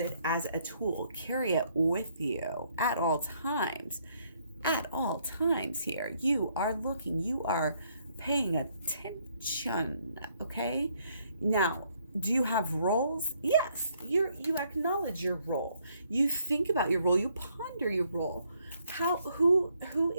as a tool. Carry it with you at all times. At all times here. You are looking. You are paying attention. Okay. Now, do you have roles? Yes. You acknowledge your role. You think about your role. You ponder your role. Who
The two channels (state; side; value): inverted; both; correlation -0.70